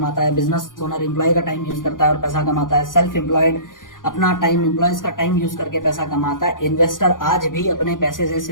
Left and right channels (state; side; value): late; right; 0.89 ms